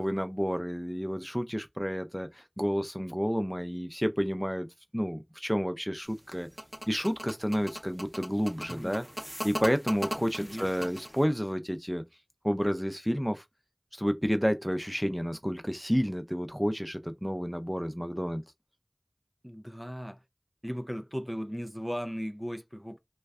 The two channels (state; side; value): identical; both; correlation 1.00